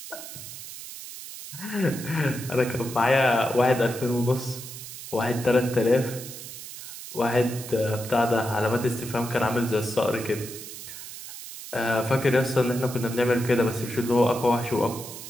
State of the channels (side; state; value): right; noise; hiss, 12 dB below the sound